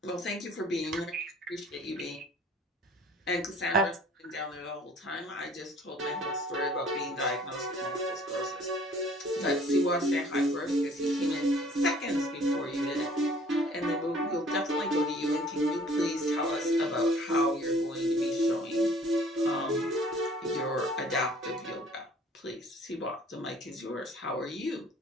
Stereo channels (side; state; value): both; normal; correlation 0.54